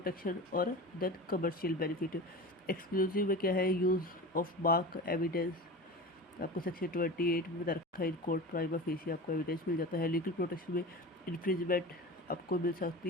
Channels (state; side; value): normal; both; correlation 0.31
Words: और देन कमर्शियल बेनिफिट। एक्सक्लूसिव में क्या है, यूज़ ऑफ मार्क एविडेंस, आपको सेक्शन 28 में बता रखा है, इन कोर्ट प्राइमा फेसी आपको एविडेंस मिल जाता है। लीगल प्रोटेक्शन में इन्फ्रिंजमेंट आपको मिल